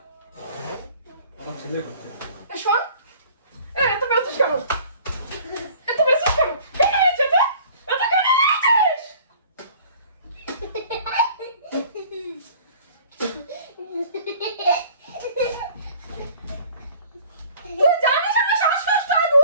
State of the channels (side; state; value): both; inverted; correlation -0.50